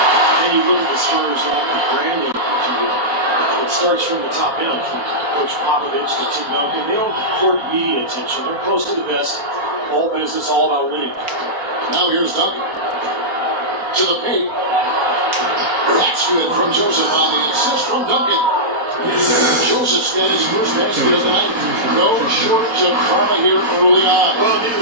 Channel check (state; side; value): late; left; 4.3 ms